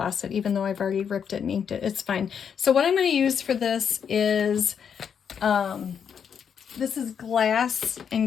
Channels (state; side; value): quieter; right; 7.5 dB